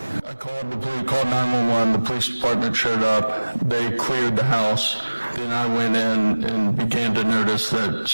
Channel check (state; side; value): inverted; both; correlation -1.00